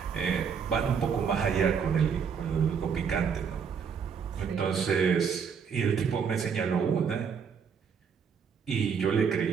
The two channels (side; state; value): left; quieter; 6.6 dB